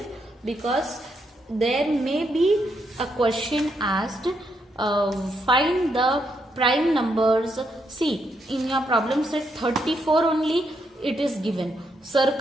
because there may be a question asked, find the prime numbers. See, in your problem set 34 only it is given.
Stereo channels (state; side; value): normal; both; correlation 0.78